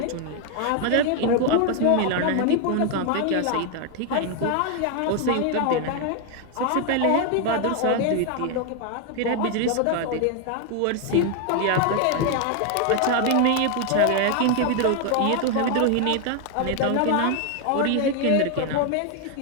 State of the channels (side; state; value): both; different; correlation 0.00